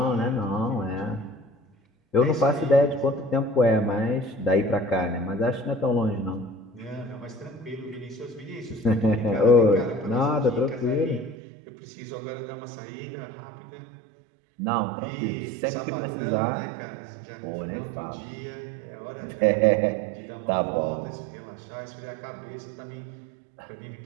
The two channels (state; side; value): drops out; left; at 11.4 s